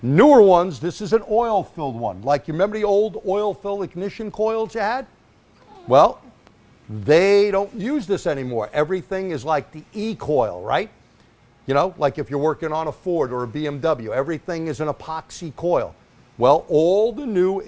Newer ones, this is an oil-filled one. Like, you remember the old oil-filled ignition coils you had? Well, they don't use this anymore. Everything is like the E-coil, right? You know, like if you're working on a Ford or a BMW, everything is an epoxy coil. Well, all the new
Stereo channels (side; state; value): both; identical; correlation 1.00